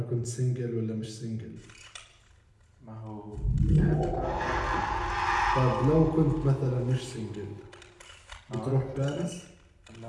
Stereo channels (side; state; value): both; identical; correlation 1.00